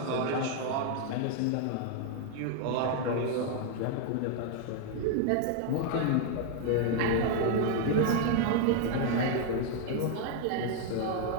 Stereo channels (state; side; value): different; both; correlation 0.00